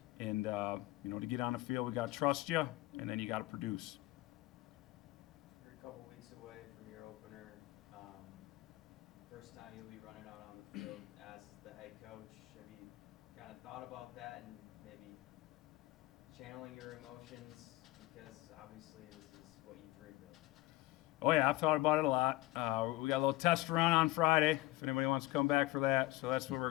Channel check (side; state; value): right; quieter; 18.8 dB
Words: and, to get on the field, we got to trust you, and then you got to produce. You're a couple weeks away from your opener. First time you'll be running out on the field as the head coach. Have you kind of thought about that and maybe channeling your emotions, because obviously this is what you dreamed of? Oh yeah, I've thought about it a lot. We got a little test run on Friday, if anybody wants to come back for that. So that's where we're